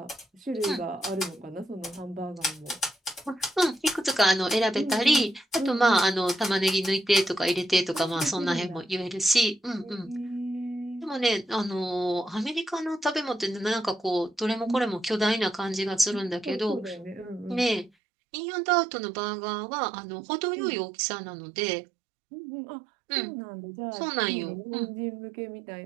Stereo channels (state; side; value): drops out; left; at 17.9 s